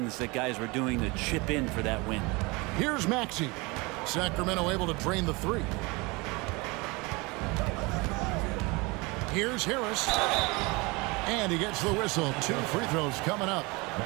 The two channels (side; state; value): left; quieter; 25.8 dB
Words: that guys were doing to chip in for that win. Here's Maxey. Sacramento able to drain the 3. Here's Harris. And he gets the whistle. 2 free throws coming up.